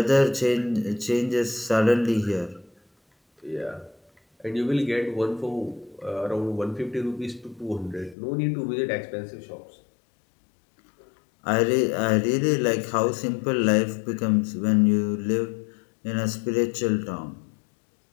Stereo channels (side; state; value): right; drops out; at 8.2 s